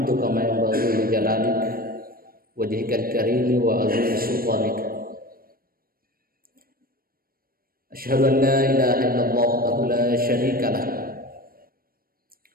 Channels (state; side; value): late; left; 0.43 ms